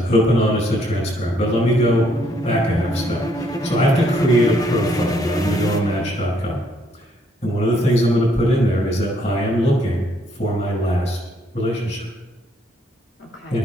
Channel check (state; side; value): normal; both; correlation 0.69